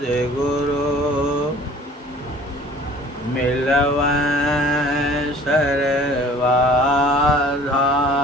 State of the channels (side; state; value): both; normal; correlation 0.50